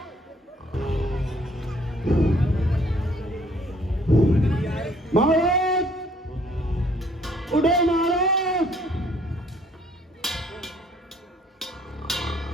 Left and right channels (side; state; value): both; normal; correlation 0.62